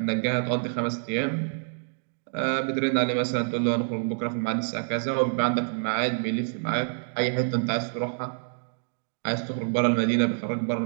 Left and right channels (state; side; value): silent; left; digital silence